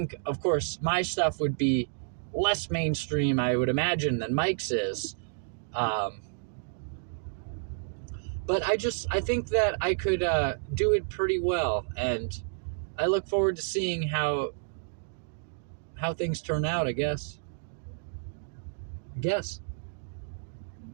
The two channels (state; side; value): silent; left; digital silence